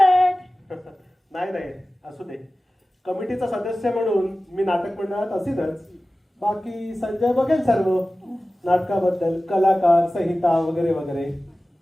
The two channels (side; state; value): both; normal; correlation 0.96